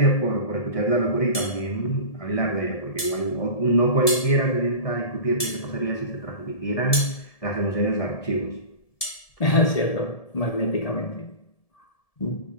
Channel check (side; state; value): right; late; 1.7 ms